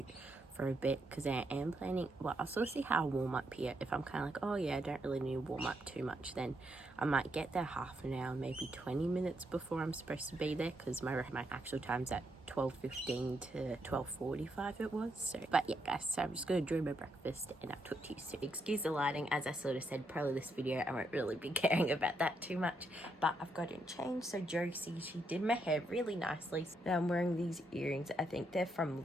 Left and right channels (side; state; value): both; normal; correlation 0.79